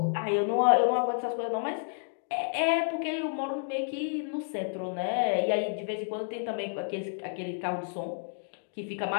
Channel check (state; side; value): silent; right; digital silence